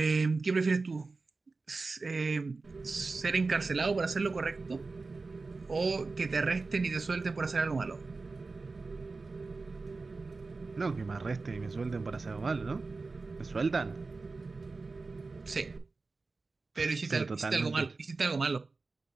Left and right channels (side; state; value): left; quieter; 3.9 dB